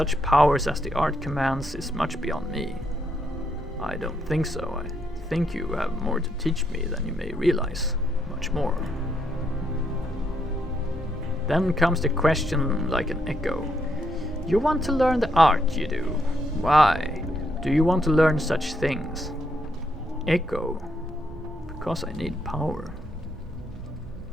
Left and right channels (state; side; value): normal; both; correlation 0.76